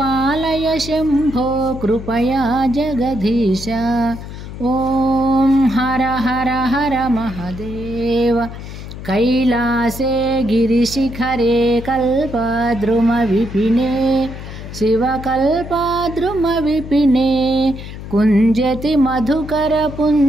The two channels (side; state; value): left; noise; hum, 11 dB below the sound